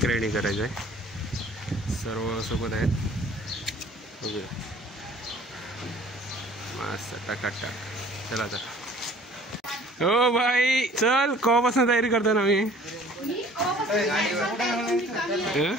रायडिंग करायचं आहे. सर्व सोबत आहेत. बघूया मस्त टाकाटाक. चला तर. हो भाई चल. कवापासून तयारी करतो ना मी.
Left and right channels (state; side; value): normal; both; correlation 0.51